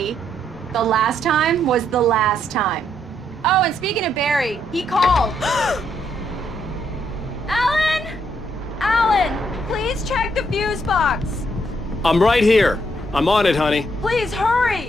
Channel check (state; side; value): normal; both; correlation 0.74